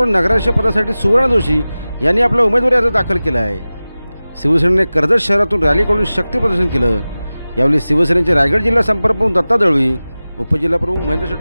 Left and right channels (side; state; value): both; inverted; correlation -0.97